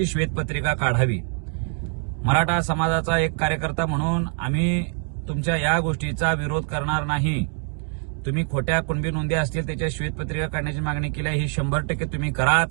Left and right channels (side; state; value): left; quieter; 39.2 dB